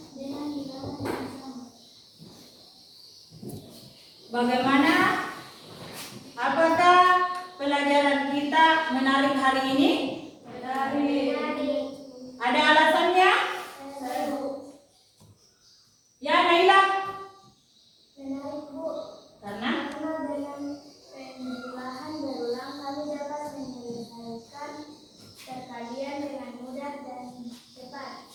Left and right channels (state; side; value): identical; both; correlation 1.00